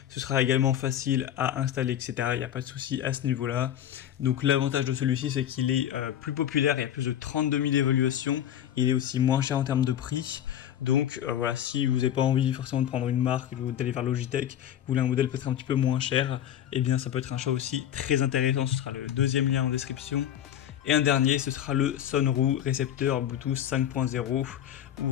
Ce sera également facile à installer, etc. Il n'y a pas de souci à ce niveau-là. Donc l'avantage de celui-ci, c'est qu'il est plus populaire. Il y a plus de 32 000 évaluations. Il est aussi moins cher en termes de prix. Donc voilà, si vous n'avez pas envie forcément de prendre une marque ou d'aller vers Logitech, vous voulez un modèle peut-être un petit peu moins cher, eh bien ça peut être un choix aussi très intéressant. Ce sera le deuxième lien en description. Et un dernier, ce sera le Sonru récepteur Bluetooth 5.0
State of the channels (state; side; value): quieter; right; 10.6 dB